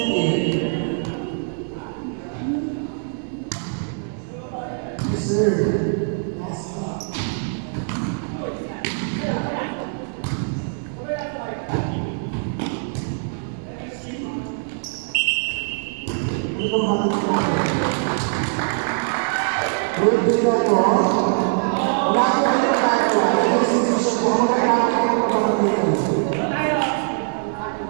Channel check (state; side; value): silent; left; 64 dB below the other